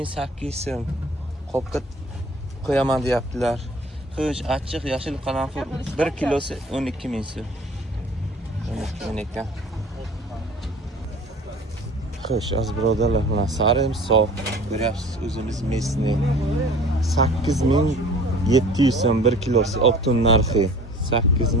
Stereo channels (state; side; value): normal; both; correlation 0.46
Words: so'm. Qopga qo'yaman deyaptilar. Xo'sh, achchiq yashil qaranfil 1 kilosi 12000 so'm. 12 ekan. Xo'sh, aziz birodarlar, mana sarimsoq ko'ryapsiz, o'zimiz mesni 8700 so'm 1 kilosi optun narxi